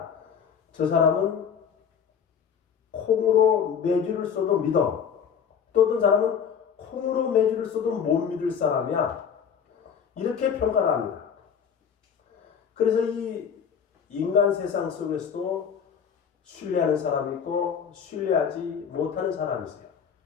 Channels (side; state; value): right; quieter; 7.3 dB